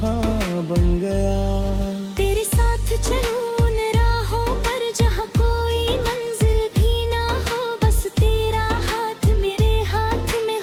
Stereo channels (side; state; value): both; identical; correlation 1.00